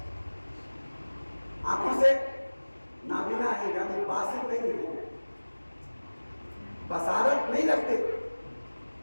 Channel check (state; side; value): inverted; both; correlation -1.00